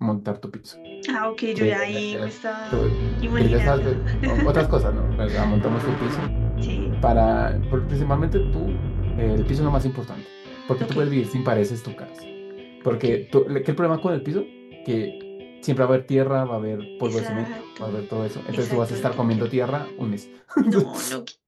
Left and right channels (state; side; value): identical; both; correlation 1.00